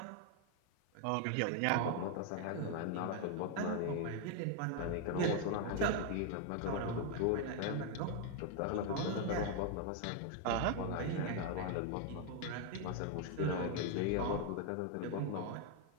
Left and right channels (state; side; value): different; both; correlation 0.00